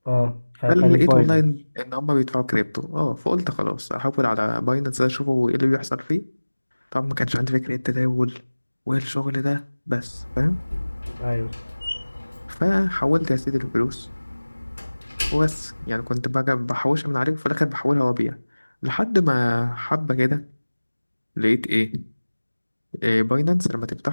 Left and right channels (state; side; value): inverted; both; correlation -1.00